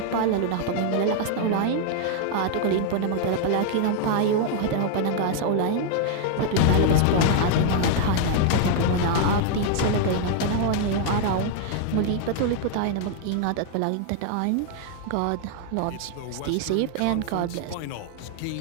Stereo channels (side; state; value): both; different; correlation 0.00